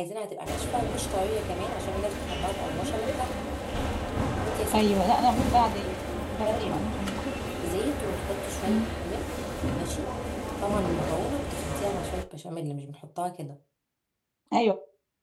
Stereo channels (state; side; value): identical; both; correlation 1.00